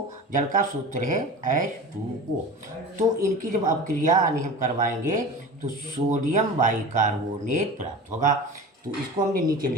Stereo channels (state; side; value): normal; both; correlation 0.34